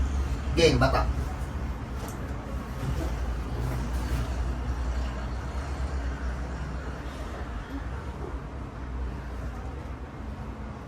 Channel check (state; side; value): identical; both; correlation 1.00